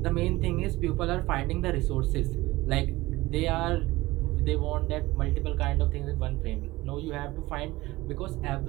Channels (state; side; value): quieter; left; 19.3 dB